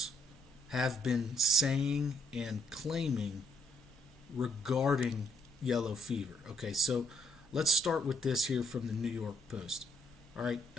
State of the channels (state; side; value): normal; both; correlation 0.72